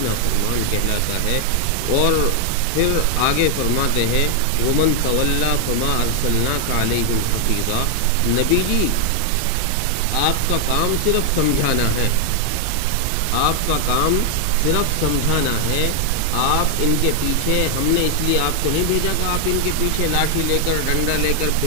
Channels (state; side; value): different; both; correlation 0.00